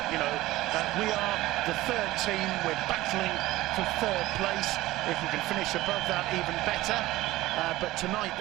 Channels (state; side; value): quieter; left; 17.3 dB